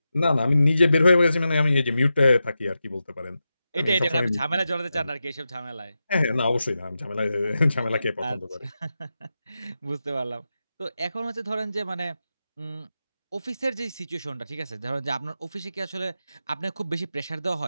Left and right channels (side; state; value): both; inverted; correlation -0.90